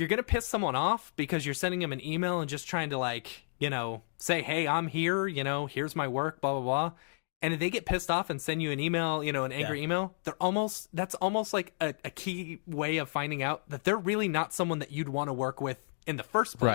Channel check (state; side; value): silent; right; digital silence